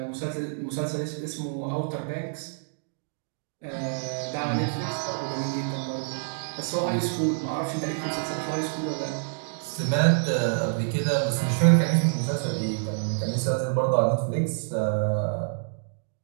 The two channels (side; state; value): left; silent; digital silence